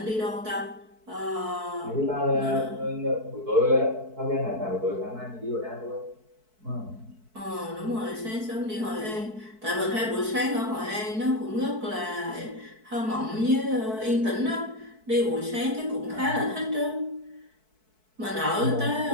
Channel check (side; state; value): left; late; 4.6 ms